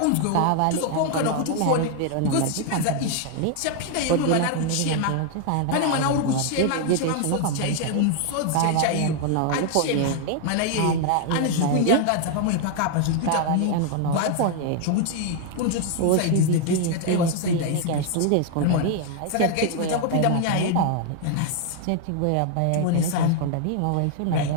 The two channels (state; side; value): different; both; correlation 0.00